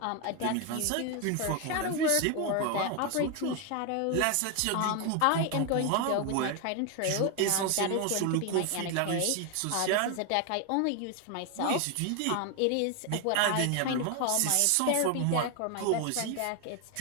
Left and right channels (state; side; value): different; both; correlation 0.01